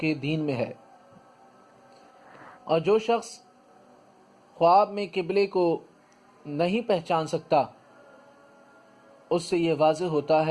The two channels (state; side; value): identical; both; correlation 1.00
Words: دین میں ہے۔ اور جو شخص خواب میں قبلے کو نہیں پہچان سکتا، اس سے یہ واضح ہوتا